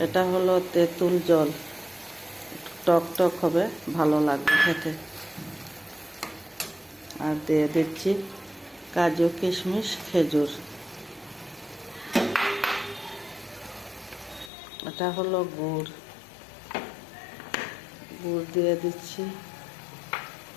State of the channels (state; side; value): drops out; right; at 14.5 s